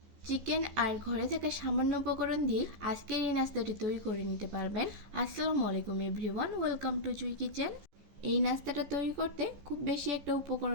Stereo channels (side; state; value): left; late; 14 ms